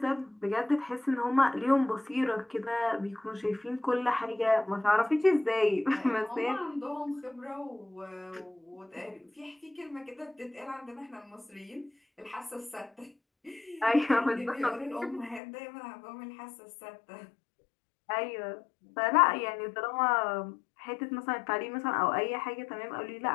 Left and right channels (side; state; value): right; drops out; at 15.4 s